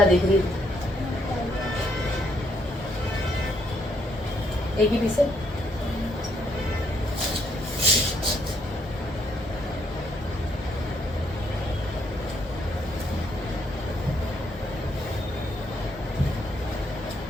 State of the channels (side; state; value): both; normal; correlation 0.72